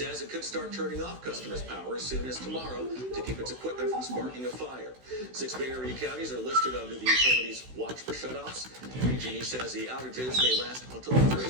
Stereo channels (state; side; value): late; left; 16 ms